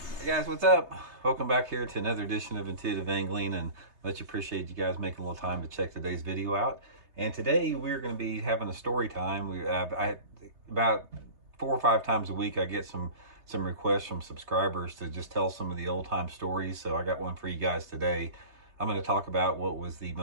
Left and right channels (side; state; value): left; late; 3.3 ms